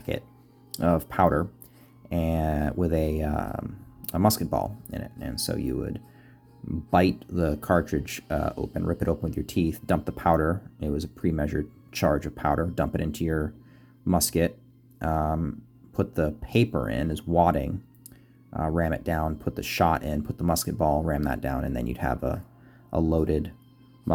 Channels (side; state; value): both; identical; correlation 1.00